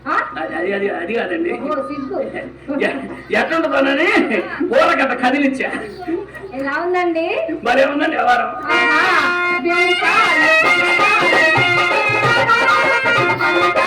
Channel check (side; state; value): both; identical; correlation 1.00